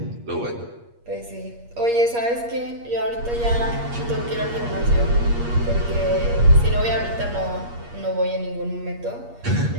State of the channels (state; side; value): late; left; 8.5 ms